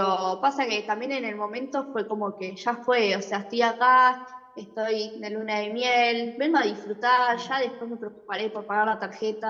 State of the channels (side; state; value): both; identical; correlation 1.00